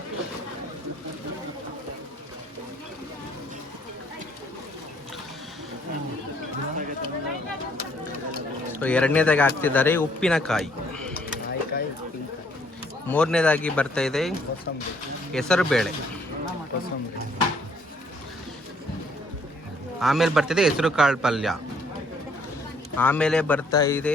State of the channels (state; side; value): normal; both; correlation 0.65